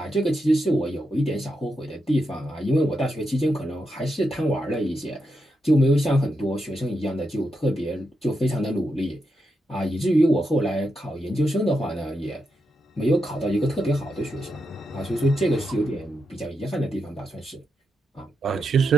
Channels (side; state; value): both; normal; correlation 0.85